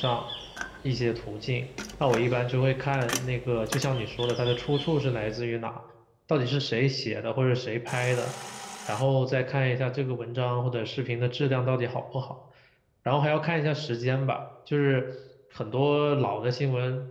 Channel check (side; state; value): both; identical; correlation 1.00